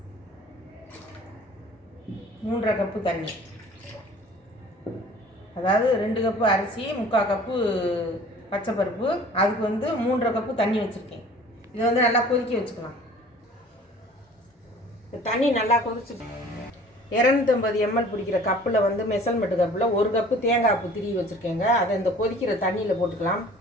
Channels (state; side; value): normal; both; correlation 0.48